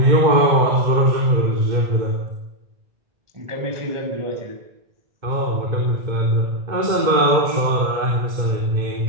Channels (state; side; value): late; left; 2.1 ms